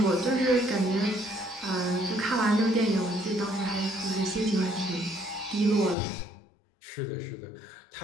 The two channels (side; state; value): right; drops out; at 6.0 s